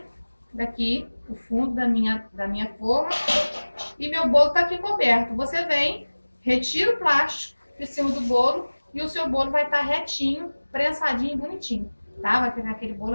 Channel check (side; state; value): both; inverted; correlation -1.00